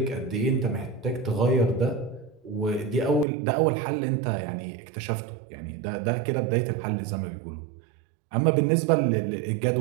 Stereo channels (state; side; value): drops out; left; at 3.2 s